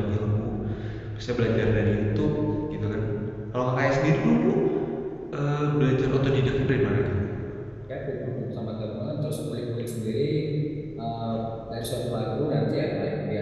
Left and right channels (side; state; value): both; identical; correlation 1.00